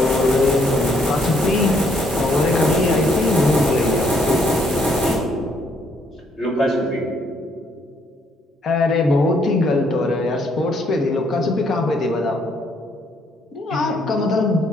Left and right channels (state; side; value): normal; both; correlation 0.69